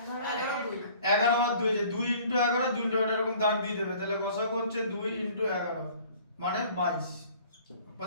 11 আর 2, যে 2 × 11, 2 × 11 এরকম দাগ দিয়ে দেবে, তাহলে গসাগু হচ্ছে 2 × 11 মানে 22।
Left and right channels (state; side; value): inverted; both; correlation -0.51